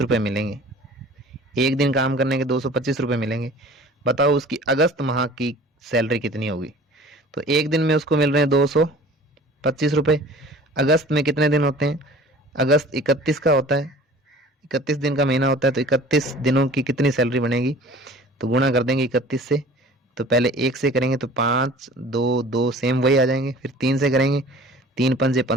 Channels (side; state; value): both; normal; correlation 0.46